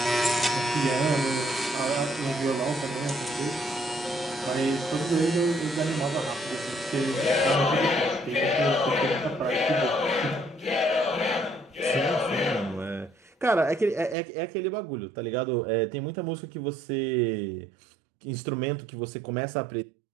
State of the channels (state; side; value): drops out; left; at 14.2 s